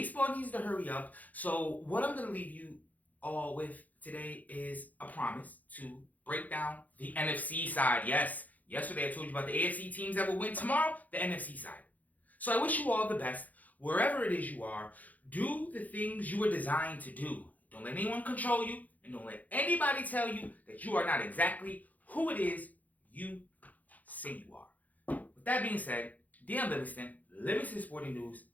needs to hurry up. So what I'm going to leave you all with today is a promise to break down the NFC side. Yes, yesterday I told you about the AFC teams that will win tomorrow, the NFC side. So I wish you all the best. Wherever it is you are, do the things you were designed to do. Don't let anyone control you, and don't let anybody tell you that you are not exactly who it is you say you are. With that being said, DM Livingston Sporting News.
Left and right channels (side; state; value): right; late; 0.079 ms